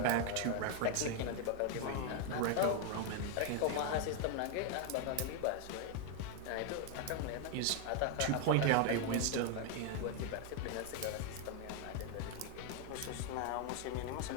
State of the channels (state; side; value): different; both; correlation 0.01